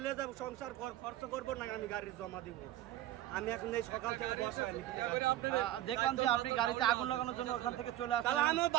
যাব, সংসার খরচ করবো না, আমি গাড়ি জমা দিব? আমি এখন এই সকাল থেকে বসা দেখলাম যে আপনি গাড়িতে আগুন লাগানোর জন্য ওখান থেকে চলে আসেন। তাহলে আমি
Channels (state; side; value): quieter; left; 14.1 dB